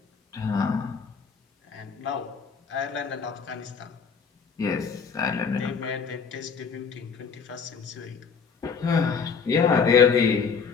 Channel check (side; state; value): right; quieter; 5.8 dB